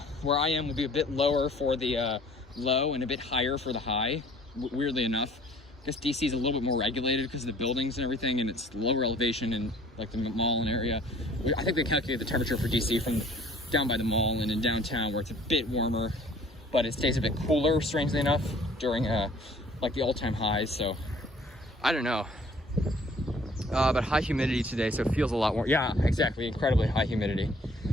where I am will be a bit lower for the low and a bit higher for the high, weirdly enough. I guess DC is a little bit more regulated because of the buildings and everything, and it's lower elevation in like the mall and area. I think they calculate the temperature for DC from down by the mall and in downtown, where it's a bit warmer, but it stays a bit cooler, strangely enough, during like the all-time highs. So I don't know, but high humidity today, so it feels a lot more. Yeah, exactly, incredibly high humidity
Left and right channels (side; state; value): both; normal; correlation 0.55